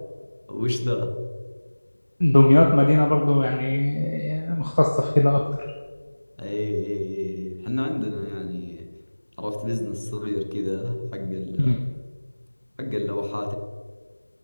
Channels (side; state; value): both; inverted; correlation -1.00